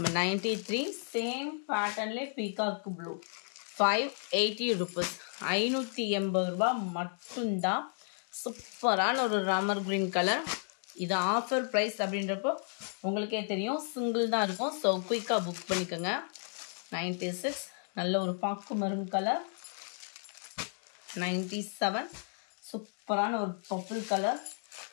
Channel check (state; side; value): silent; right; 56 dB below the other